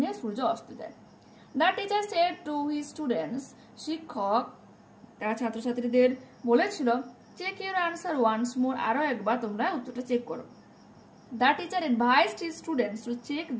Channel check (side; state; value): both; identical; correlation 1.00